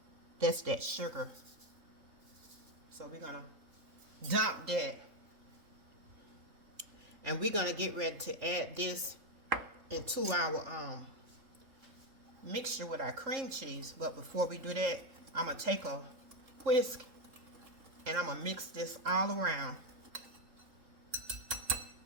That's that sugar. So we're going to dump that. And we're going to get ready to add this into our mixture with our cream cheese. But before we do that, I'm going to take a whisk and I'm going to mix this all around.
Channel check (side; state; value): left; late; 3.7 ms